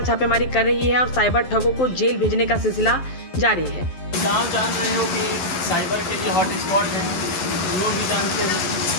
छापेमारी कर रही है और साइबर ठगों को जेल भेजने का सिलसिला जारी है। आप जान रहे हो कि साइबर के लिए हॉट स्पॉट है, लोग भी जानते हैं।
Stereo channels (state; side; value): late; right; 12 ms